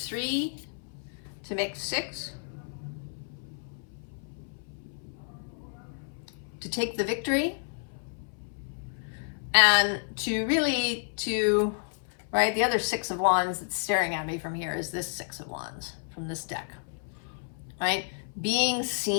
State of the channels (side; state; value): right; silent; 57 dB below the other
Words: to make 6. To take the victory. And to really, right, the other 6 of Wands that's staring at me from here is this 6 of Wands from this deck. Right? Being